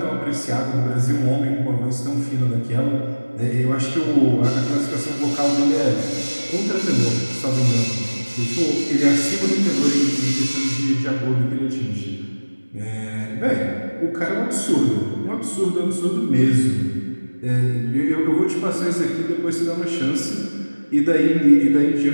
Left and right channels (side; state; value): both; inverted; correlation -1.00